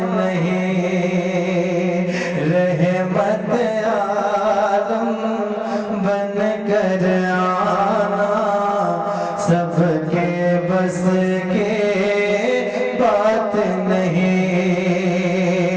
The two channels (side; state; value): both; identical; correlation 1.00